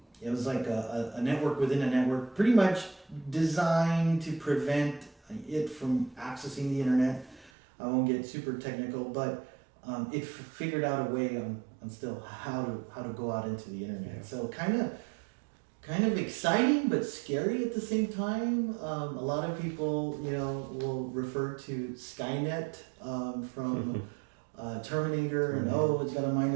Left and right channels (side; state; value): left; drops out; at 7.5 s